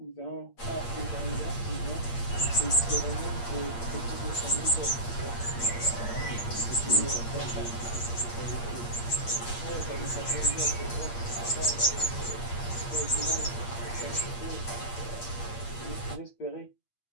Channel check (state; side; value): late; right; 8.5 ms